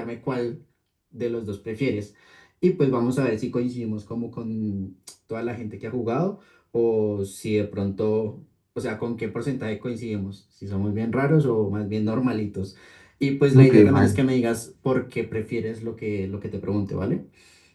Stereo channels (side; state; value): both; identical; correlation 1.00